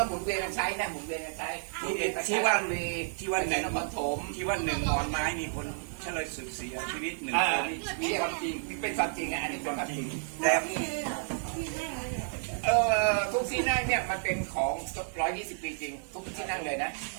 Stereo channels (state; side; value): silent; left; digital silence